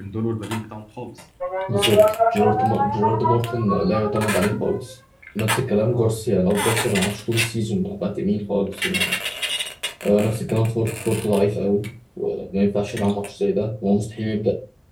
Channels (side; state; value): both; identical; correlation 1.00